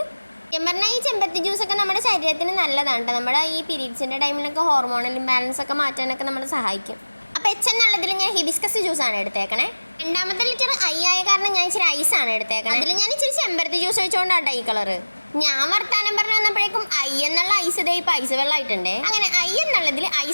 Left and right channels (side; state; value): both; inverted; correlation -1.00